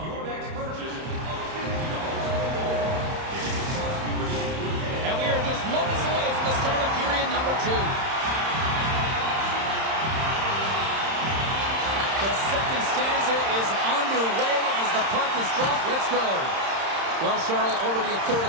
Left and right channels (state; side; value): late; left; 31 ms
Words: Moments away from the start of period number 2. The second stanza is underway as the puck is dropped. Let's go. Well, Cheryl, already a third